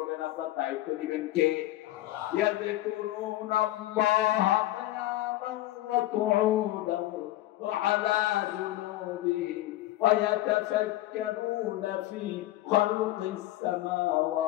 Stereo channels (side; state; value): right; quieter; 15.8 dB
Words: আপনার দায়িত্ব নেবেন কে? ইয়াযকুরুনাল্লাহ কিয়ামান ওয়া কুউদান ওয়া আলা জুনুবিহিম ওয়া ইয়াতাফাক্কারুনা ফি খালকিস